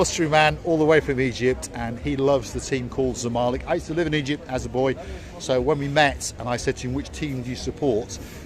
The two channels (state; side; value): identical; both; correlation 1.00